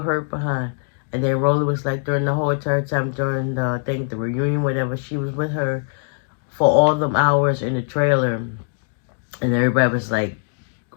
behind? And then Rollie was like, during the whole entire time, during the thing, the reunion, whatever, she was with her for all them hours in the trailer. And everybody was like,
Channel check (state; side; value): silent; right; digital silence